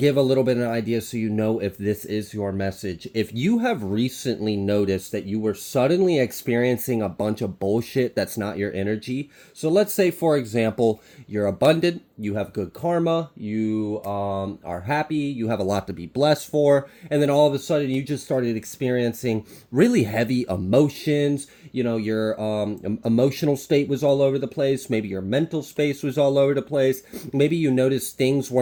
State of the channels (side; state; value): both; identical; correlation 1.00